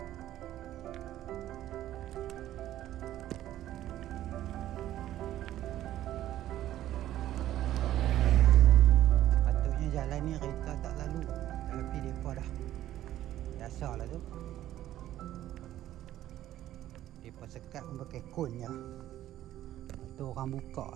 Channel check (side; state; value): left; quieter; 13.1 dB